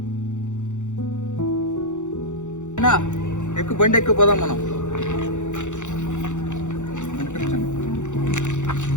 ఎక్కువ బండి ఎక్కువ పోదాం మనం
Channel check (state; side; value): late; right; 0.85 ms